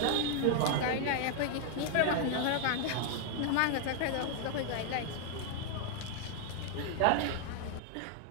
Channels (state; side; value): different; both; correlation 0.00